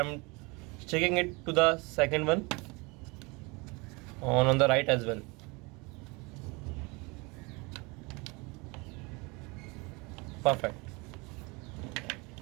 sticking it to the second one on the right as well. Perfect.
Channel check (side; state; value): left; quieter; 27.3 dB